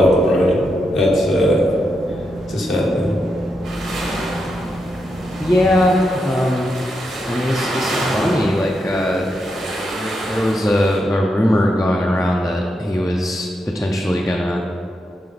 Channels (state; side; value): normal; both; correlation 0.84